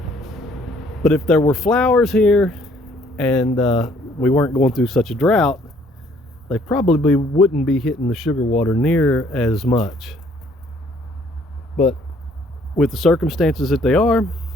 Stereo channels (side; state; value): both; normal; correlation 0.62